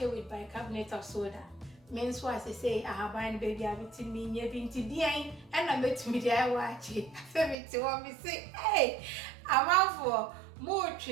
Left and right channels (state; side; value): drops out; left; at 7.6 s